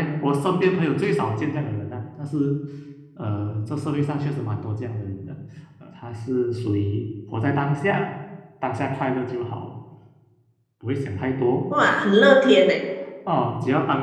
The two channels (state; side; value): identical; both; correlation 1.00